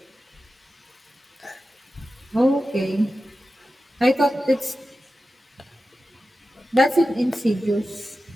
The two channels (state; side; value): normal; both; correlation 0.93